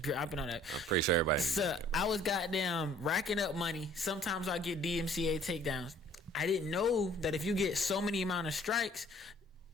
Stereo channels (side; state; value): both; normal; correlation 0.56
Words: dropping on that. I'm pretty sure everybody. So I was goddamn racking up money. Sometimes I get DMCA takedowns. I didn't know that if you get so many amount of strikes,